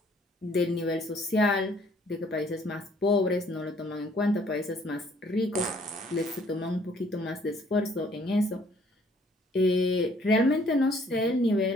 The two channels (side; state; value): both; normal; correlation 0.61